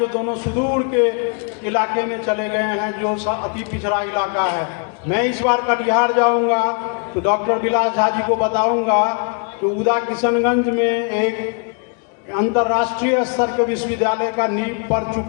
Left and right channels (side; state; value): right; quieter; 38.2 dB